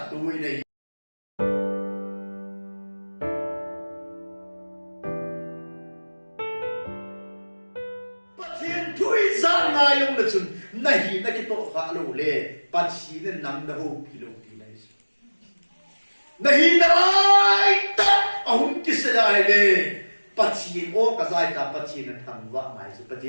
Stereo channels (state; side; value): inverted; both; correlation -1.00